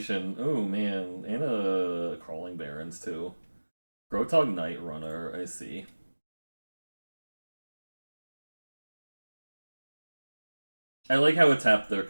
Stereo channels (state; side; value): inverted; both; correlation -1.00